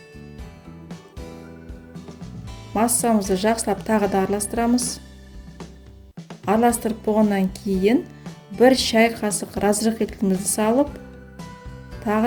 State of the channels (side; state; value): both; identical; correlation 1.00